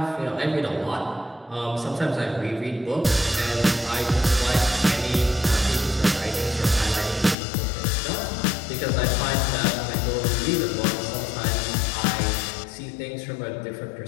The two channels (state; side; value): drops out; right; at 7.4 s